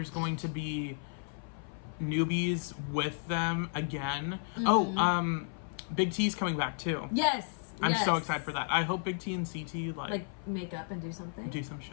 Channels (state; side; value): silent; right; 55 dB below the other